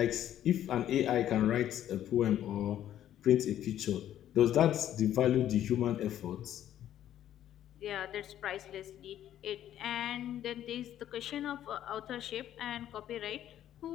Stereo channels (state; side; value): quieter; right; 11.5 dB